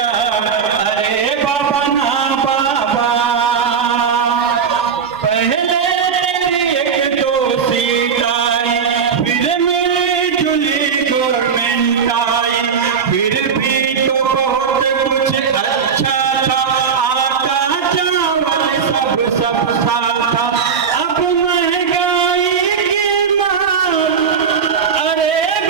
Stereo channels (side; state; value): left; quieter; 6.4 dB